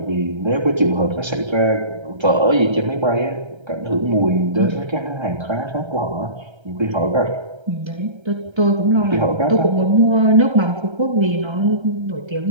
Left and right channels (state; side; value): late; left; 1.3 ms